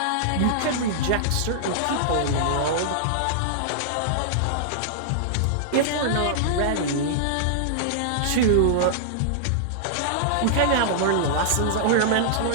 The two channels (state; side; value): different; both; correlation -0.02